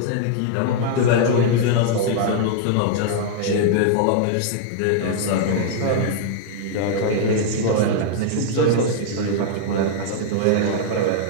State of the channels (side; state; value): both; different; correlation -0.01